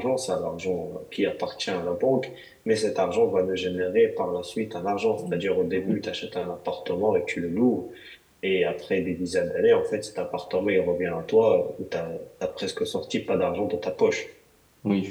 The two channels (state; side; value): identical; both; correlation 1.00